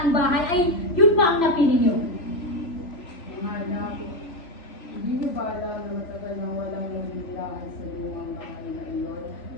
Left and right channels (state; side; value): late; right; 3.0 ms